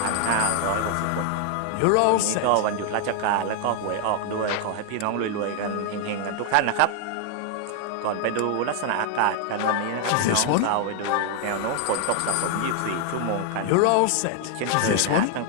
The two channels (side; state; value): both; different; correlation 0.00